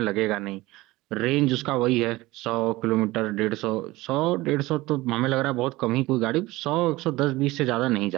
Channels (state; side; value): quieter; left; 19.5 dB